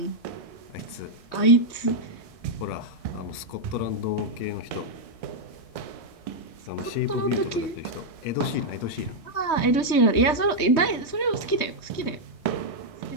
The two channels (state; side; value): late; right; 3.2 ms